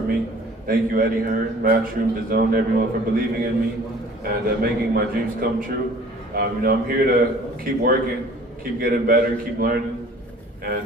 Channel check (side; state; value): both; normal; correlation 0.50